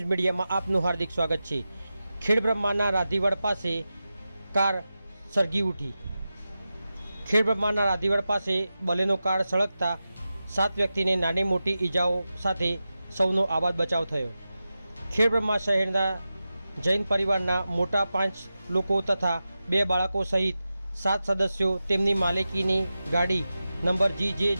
મીડિયામાં આપનું હાર્દિક સ્વાગત છે। ખેડબ્રહ્માના રાધીવડ પાસે કાર સળગી ઉઠી। ખેડબ્રહ્માના રાધીવડ પાસે બલેનો કાર સળગતા 7 વ્યક્તિને નાની મોટી ઈજાઓ સાથે સૌનો આબાદ બચાવ થયો। ખેડબ્રહ્મા શહેરના જૈન પરિવારના મોટા 5 લોકો તથા 2 બાળકો સહિત 7 સદસ્યો તેમની માલિકીની ગાડી નંબર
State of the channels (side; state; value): both; inverted; correlation -0.93